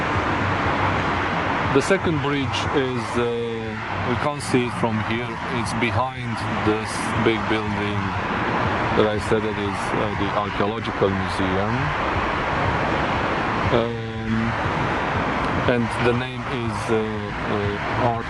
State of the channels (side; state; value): both; identical; correlation 1.00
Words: The second bridge is, we can't see it from here, it's behind this big building that I said that is the Archaeological Museum. And the name is Art